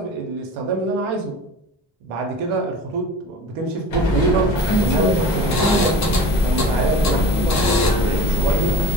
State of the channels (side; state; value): both; normal; correlation 0.40